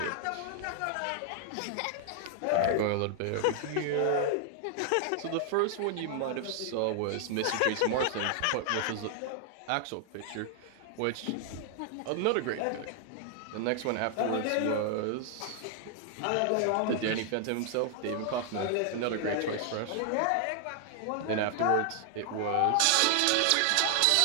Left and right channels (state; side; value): different; both; correlation 0.00